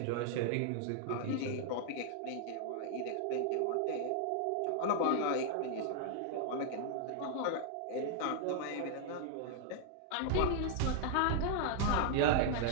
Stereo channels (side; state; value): both; different; correlation 0.00